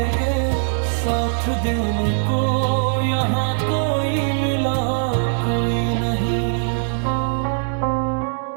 साथ देने को यहाँ कोई मिला कोई नहीं।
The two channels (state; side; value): silent; left; 65 dB below the other